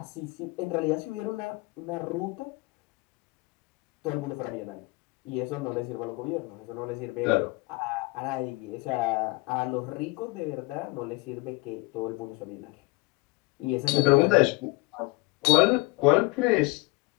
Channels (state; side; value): quieter; right; 23.6 dB